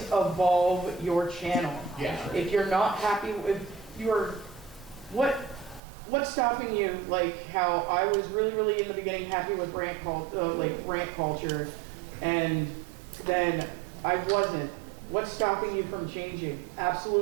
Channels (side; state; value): left; drops out; at 5.8 s